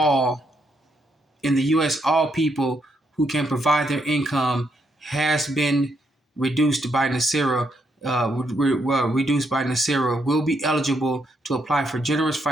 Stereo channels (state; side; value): normal; both; correlation 0.77